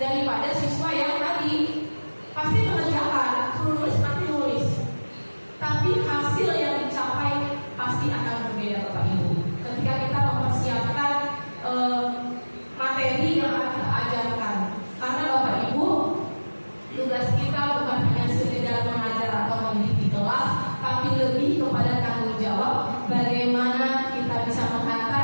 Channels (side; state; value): both; inverted; correlation -1.00